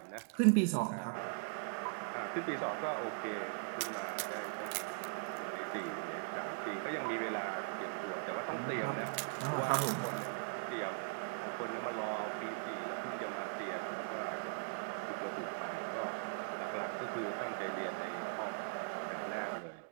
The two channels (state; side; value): quieter; left; 34.9 dB